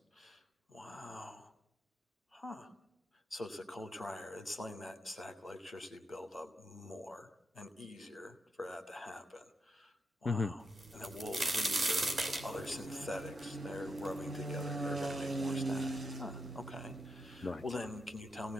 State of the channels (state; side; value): normal; both; correlation 0.84